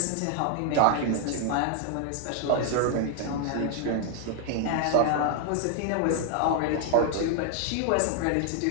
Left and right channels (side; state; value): both; different; correlation 0.00